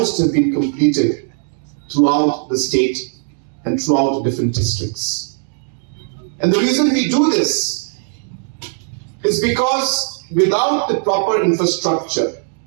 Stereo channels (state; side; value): silent; left; digital silence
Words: have been completed throughout the state and throughout different districts. And the reason we do this is because without the proper infrastructure,